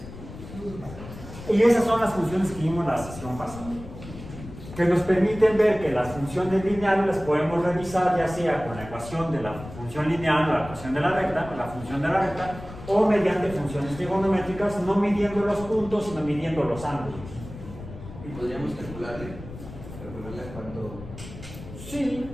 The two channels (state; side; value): noise; left; rumble, 14 dB below the sound